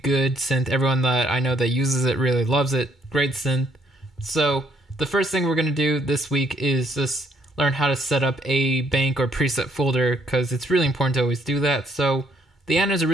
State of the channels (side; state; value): both; normal; correlation 0.68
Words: synth. Everyone that I know that uses it really loves it. Great synth. So, the first thing we're going to do this week is just learn how to set up a bank or preset folder, because it's really important to always do that. So, the A.N.A is a